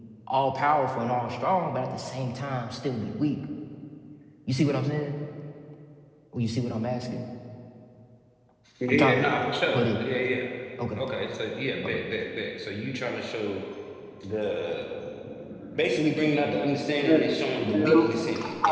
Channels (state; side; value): identical; both; correlation 1.00